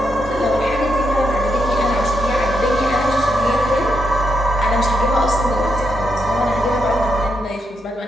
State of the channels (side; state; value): both; normal; correlation 0.82